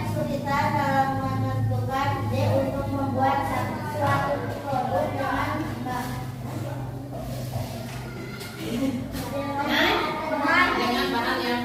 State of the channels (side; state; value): both; identical; correlation 1.00